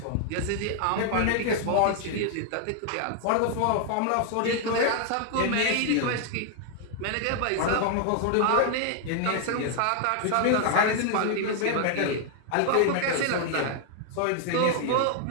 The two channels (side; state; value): both; different; correlation 0.00